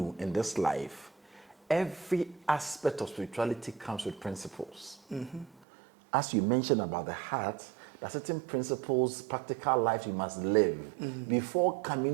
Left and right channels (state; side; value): drops out; left; at 5.6 s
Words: in this life, every aspect of spirituality comes with principles. As you mentioned about the heart, there are certain principles, practical life you must live before